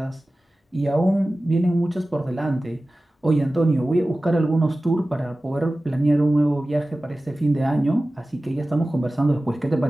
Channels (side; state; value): both; normal; correlation 0.96